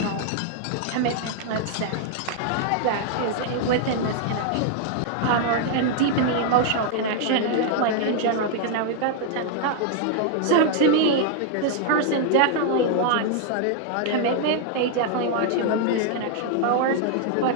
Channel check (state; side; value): different; both; correlation 0.00